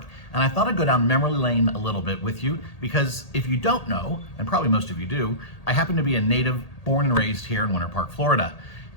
and I thought I'd go down memory lane a little bit with you because if you don't know, and probably most of you do, I happen to be a native born and raised here in Winter Park, Florida,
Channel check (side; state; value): right; late; 1.8 ms